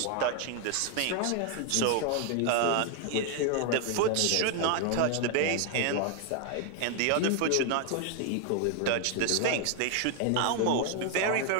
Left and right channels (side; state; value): both; different; correlation 0.00